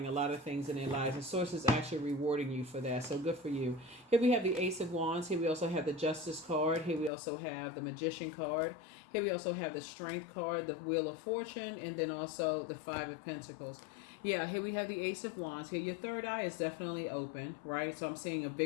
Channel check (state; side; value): drops out; right; at 7.1 s